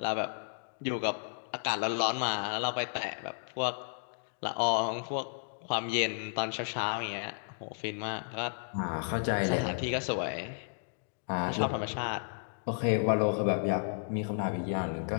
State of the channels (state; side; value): silent; right; digital silence